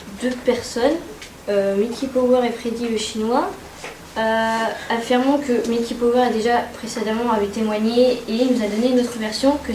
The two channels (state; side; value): identical; both; correlation 1.00